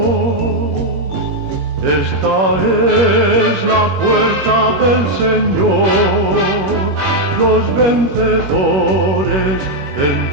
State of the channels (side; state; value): left; late; 21 ms